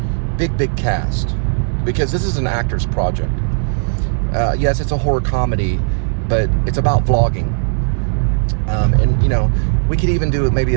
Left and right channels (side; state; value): left; silent; digital silence